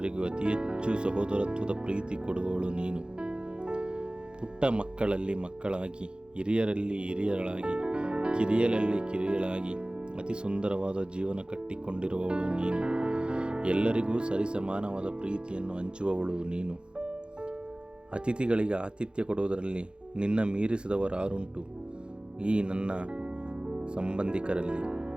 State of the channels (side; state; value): left; late; 0.053 ms